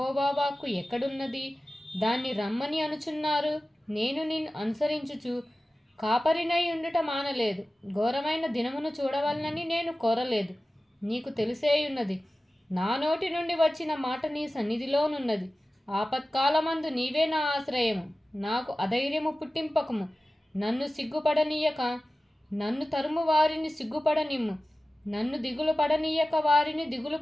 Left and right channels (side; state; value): both; normal; correlation 0.96